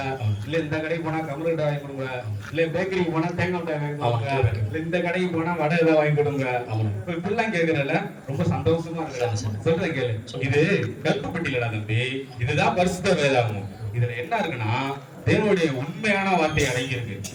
இல்ல இந்த கடைக்கு போனா கமரு மிட்டாய் வாங்கி கொடுங்க, இல்ல பேக்கரிக்கு போனா தேங்காய் மிட்டாய் வாங்கி கொடுங்க, இல்ல இந்த கடைக்கு போனா வடை ஏதாவது வாங்கி கொடுங்க. இப்ப இப்படிலாம் கேக்குறல ரொம்ப சந்தோஷமா இருக்கு. சொல்றேன் கேளு. இது கருப்பு பெட்டியிலடா தம்பி. இதுதான் பரிசுத்த வேதாகமம். இதுல என்ன இருக்குன்னா தேவனுடைய உண்மையான வார்த்தை அடங்கி இருக்கு.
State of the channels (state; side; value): identical; both; correlation 1.00